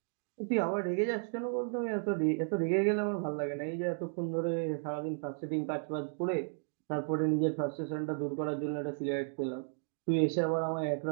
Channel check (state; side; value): silent; left; digital silence